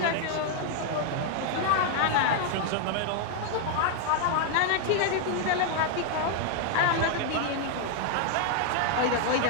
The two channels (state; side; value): different; both; correlation 0.00